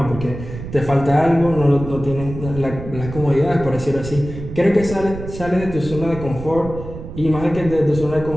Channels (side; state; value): right; noise; rumble, 10 dB below the sound